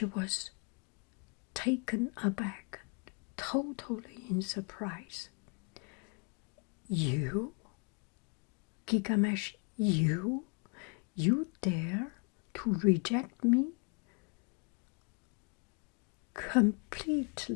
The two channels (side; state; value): right; quieter; 36.1 dB